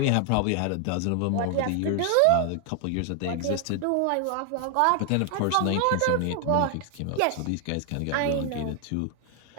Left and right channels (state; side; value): different; both; correlation 0.00